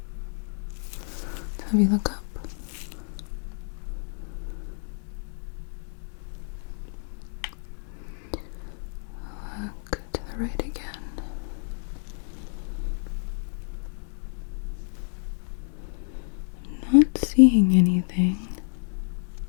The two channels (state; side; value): silent; right; 59 dB below the other